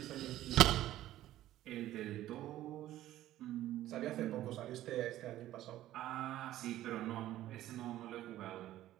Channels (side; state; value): left; quieter; 14.0 dB